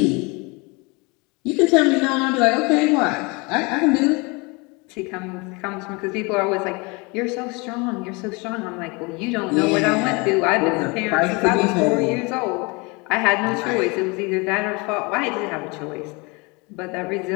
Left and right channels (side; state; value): right; quieter; 27.9 dB